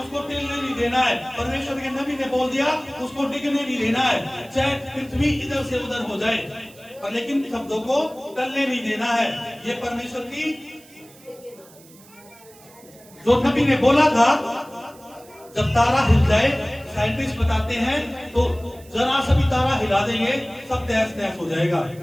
उसको टिकने नहीं देना है। परमेश्वर के नबी ने बोल दिया, उसको टिकने नहीं देना है, चाहे पृथ्वी इधर से उधर हो जाए, पर लेकिन शब्दों को टलने नहीं देना है। ये परमेश्वर की जो नबी ने बोला था, जब तारा हिल जाए, साइंटिस्ट बताते हैं, तो जरा सा भी तारा हिला देंगे, सब तहस नहस हो जाएगा।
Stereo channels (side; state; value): right; noise; hiss, 24 dB below the sound